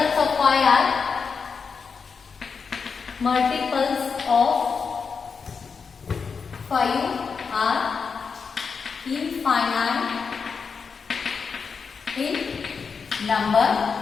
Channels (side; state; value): right; quieter; 5.6 dB